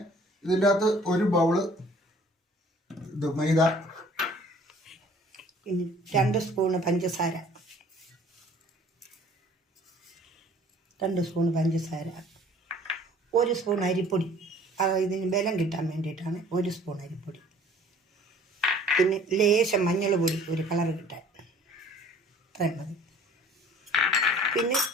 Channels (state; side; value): normal; both; correlation 0.53